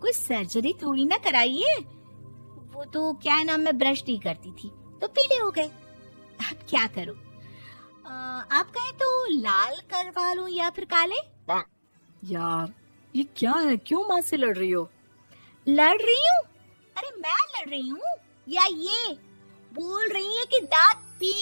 कोई सर्जरी थोड़ी ना कराई है। वो तो क्या है ना, मैं ब्रश नहीं करती थी तो पीले हो गए। अब क्या करूं? आप कहें तो लाल करवा लूं या फिर काले? यार ये क्या है, क्यों माँ से लड़ रही हो? लड़ रही हूँ? अरे मैं लड़ रही हूँ या ये बोल रही है कि दांत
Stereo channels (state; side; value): inverted; both; correlation -1.00